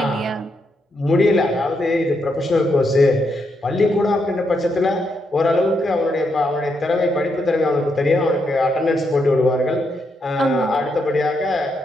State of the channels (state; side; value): normal; both; correlation 0.80